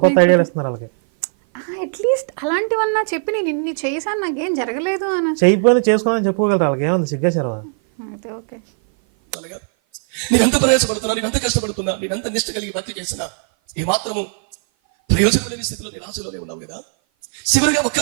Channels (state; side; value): silent; left; 56 dB below the other